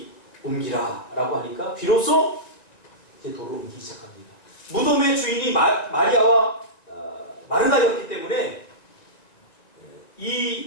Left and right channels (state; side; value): late; right; 1.9 ms